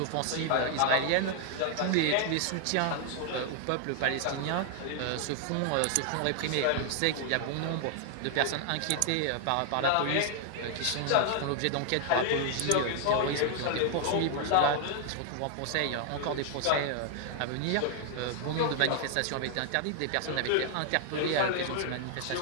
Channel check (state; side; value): different; both; correlation 0.00